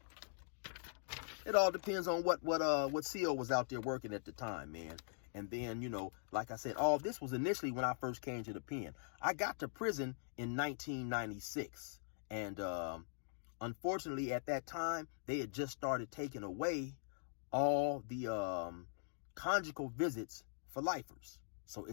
CO was out there working at the time, man. And then, you know, like I said, all this was initially when I first came to the pen. I got to prison in 1996, and unfortunately, at that time, they had just started taking away all the conjugal visits for lifers. So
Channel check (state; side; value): silent; right; digital silence